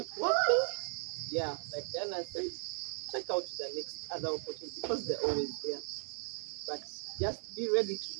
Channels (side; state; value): left; silent; 53 dB below the other